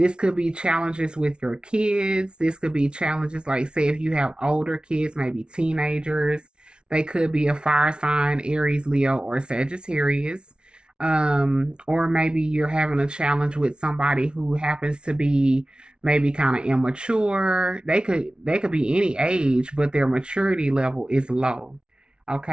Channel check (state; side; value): late; left; 0.056 ms